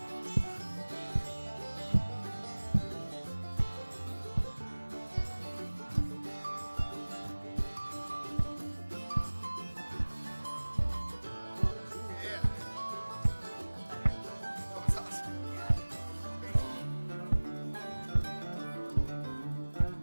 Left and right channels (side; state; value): both; inverted; correlation -1.00